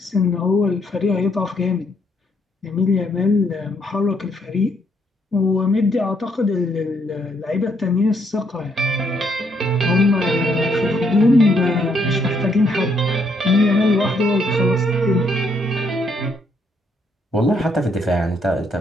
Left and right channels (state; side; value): normal; both; correlation 0.72